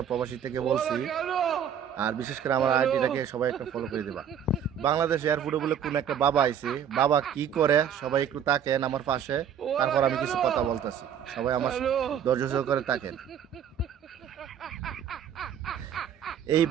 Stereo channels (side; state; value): left; quieter; 8.5 dB